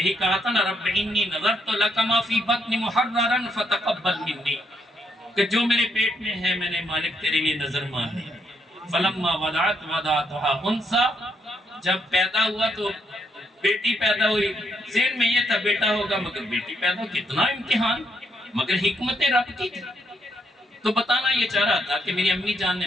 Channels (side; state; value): both; normal; correlation 0.75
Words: کہا تھا نا، رب انی نظرت لک ما فی بطنی محررا فتقبل منی، کہ جو میرے پیٹ میں ہے میں نے مالک تیرے لیے نظر مان لی۔ فلما وضعتها انثى، جب پیدا ہوا تو بیٹی پیدا ہوئی، ذہن میں یہ تھا بیٹا ہوگا، مگر بیٹی پیدا ہو، کتنا امتحان، مگر حکمت رب کی تھی۔ تو بتانا یہ چاہ رہا تھا کہ میری امی جان نے